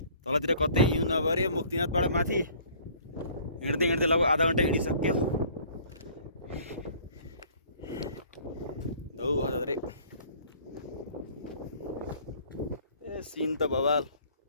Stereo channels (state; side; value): inverted; both; correlation -0.54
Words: तलतिर कतै हिउँ नभरे मुक्तिनाथबाट माथि हिँड्दै हिँड्दै लगभग आधा घन्टा हिँडिसक्यो। धौ हजुर ए सिन त बवाल,